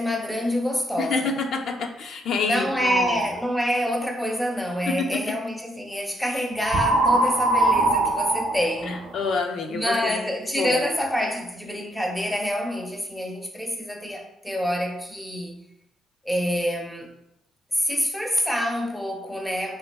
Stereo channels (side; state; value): both; normal; correlation 0.75